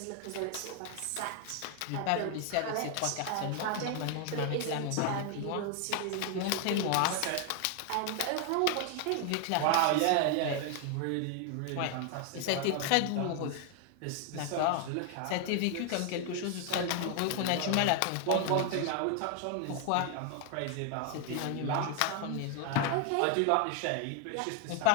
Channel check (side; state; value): both; different; correlation 0.00